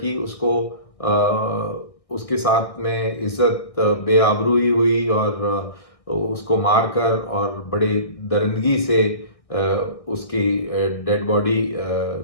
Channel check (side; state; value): right; late; 1.6 ms